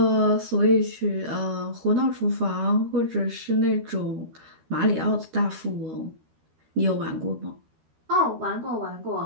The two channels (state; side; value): late; left; 13 ms